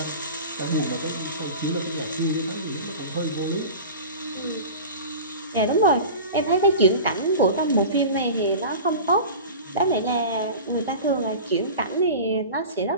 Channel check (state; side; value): inverted; both; correlation -0.34